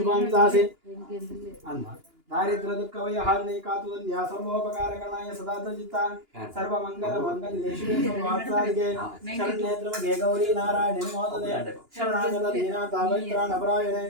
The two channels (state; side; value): late; left; 2.9 ms